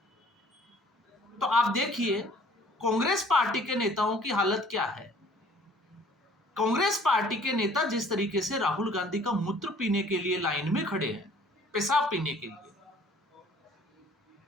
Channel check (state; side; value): normal; both; correlation 0.54